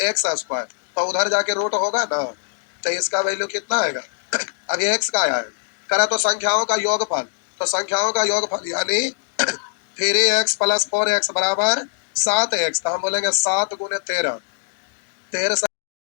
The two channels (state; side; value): silent; right; digital silence